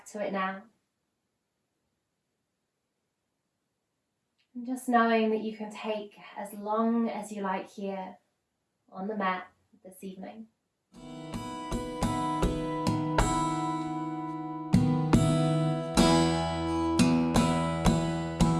to it now. And just knowing that you can take as long as you like here on the mat this evening.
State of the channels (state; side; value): identical; both; correlation 1.00